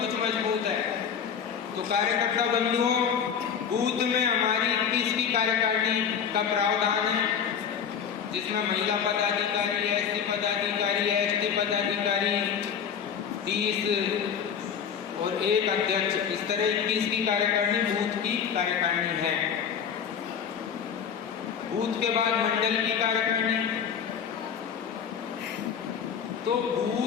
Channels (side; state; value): right; quieter; 7.5 dB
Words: मजबूत है। तो कार्यकर्ता बंधुओं, बूथ में हमारी 21 की कार्यकारिणी का प्रावधान है, जिसमें महिला पदाधिकारी, एससी पदाधिकारी, एसटी पदाधिकारी, 30 और एक अध्यक्ष, इस तरह 21 की कार्यकारिणी बूथ की कार्यकारिणी है। बूथ के बाद मंडल की कार्यकारिणी। तो